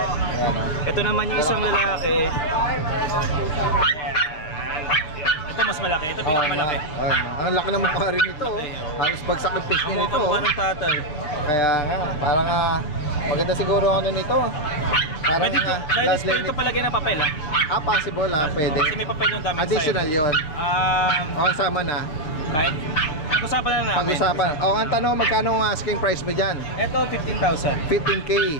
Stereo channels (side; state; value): right; late; 6.7 ms